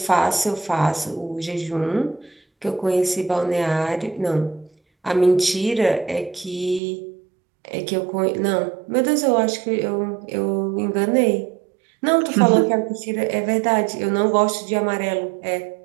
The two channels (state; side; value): drops out; left; at 6.8 s